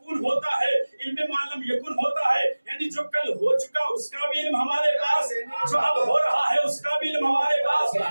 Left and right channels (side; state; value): both; inverted; correlation -1.00